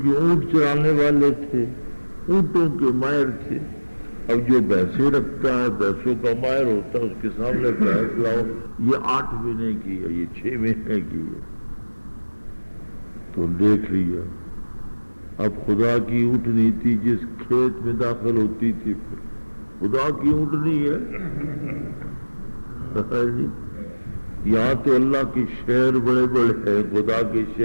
اونٹ چرانے والے تھے، اونٹوں کے ماہر تھے۔ اب جو بھینسیں رکھتا ہے، بھینسوں کا ماہر ہوتا ہے، اس کے سامنے بھینس لاؤ، یہ 8 مہینے کی ہے، یہ 6 مہینے کی ہے، تو دیکھ لیا۔ اب خدا کی اونٹنی تھی، جس کھیت میں داخل ہوتی تھی خدا کی اونٹنی ہے۔ یہاں تو اللہ کے شہر بڑے بڑے ہیں، خدا کے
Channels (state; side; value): inverted; both; correlation -1.00